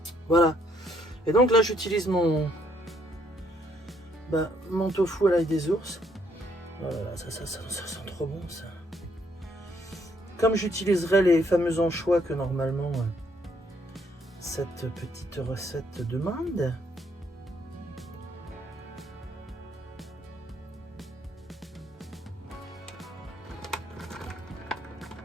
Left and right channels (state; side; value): normal; both; correlation 0.70